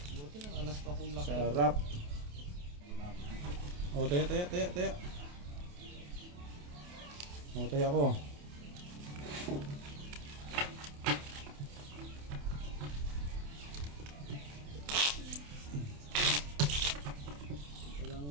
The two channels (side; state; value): left; late; 28 ms